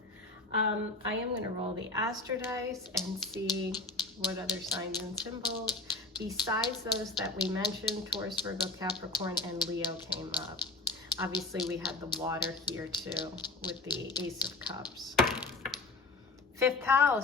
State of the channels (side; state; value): right; quieter; 3.4 dB